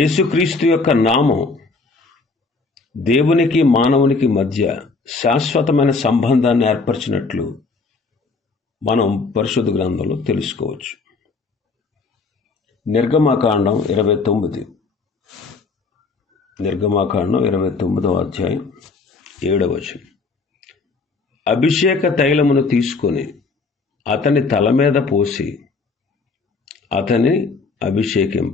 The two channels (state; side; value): quieter; right; 4.2 dB